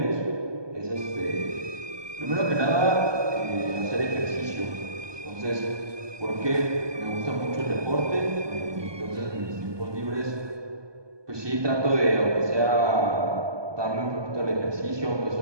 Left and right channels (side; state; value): left; late; 1.2 ms